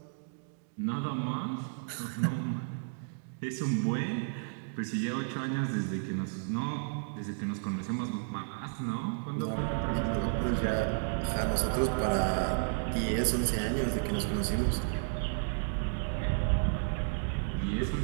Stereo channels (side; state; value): left; silent; digital silence